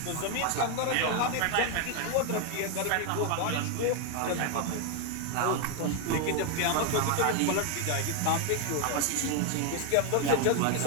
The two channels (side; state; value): both; different; correlation 0.01